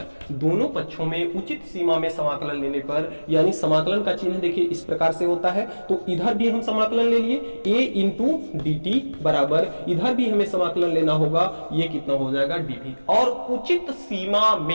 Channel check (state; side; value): inverted; both; correlation -1.00